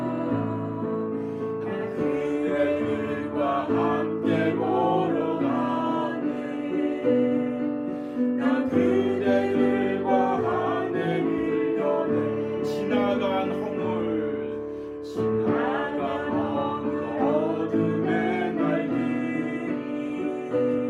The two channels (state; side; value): identical; both; correlation 1.00